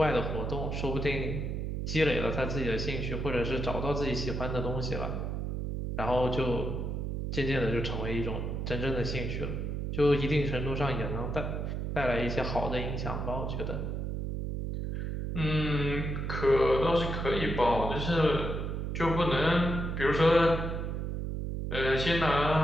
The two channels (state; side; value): noise; right; hum, 3 dB below the sound